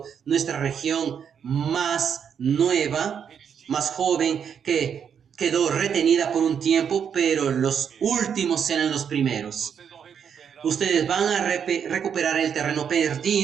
nuestra región más nueva, más joven, que quedó retenida por un tiempo, pero los últimos serán los primeros. Ustedes van a recuperar el terreno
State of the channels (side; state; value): left; quieter; 7.6 dB